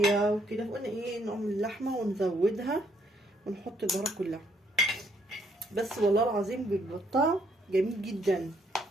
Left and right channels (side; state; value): both; normal; correlation 0.70